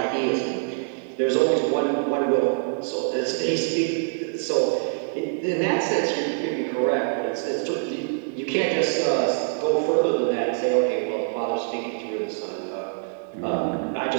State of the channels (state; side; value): silent; left; digital silence